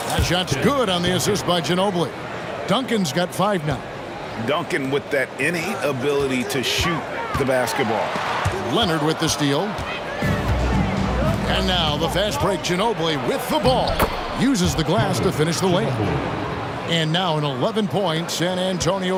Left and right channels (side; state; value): both; identical; correlation 1.00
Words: That shot's good on the assist by Ginobili. Duncan's got 5 now. Duncan with that innate ability to shoot the basketball. Leonard with the steal. And now the fast break. Ginobili with the ball. Uses the glass to finish the layup. And now an 11-point San